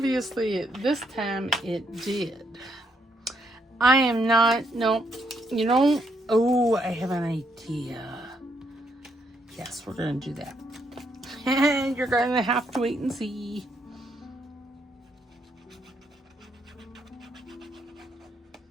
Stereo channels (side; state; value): both; normal; correlation 0.75